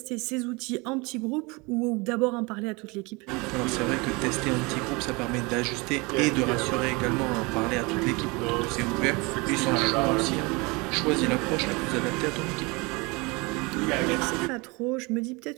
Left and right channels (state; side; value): quieter; left; 26.7 dB